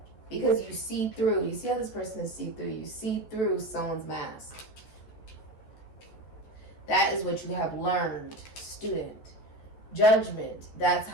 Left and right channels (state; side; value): late; right; 14 ms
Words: Because you see through. You see how this person is see through. You see through someone's mask. That is what you have learned, student. Judgment, that's